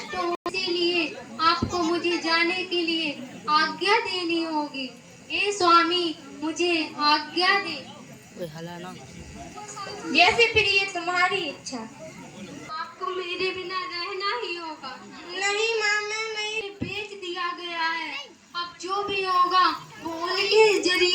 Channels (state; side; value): identical; both; correlation 1.00